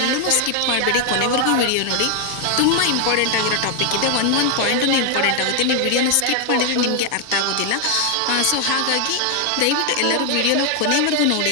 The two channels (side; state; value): both; different; correlation 0.00